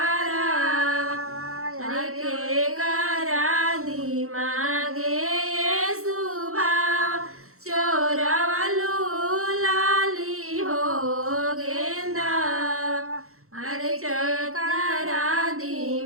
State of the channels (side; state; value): left; late; 0.63 ms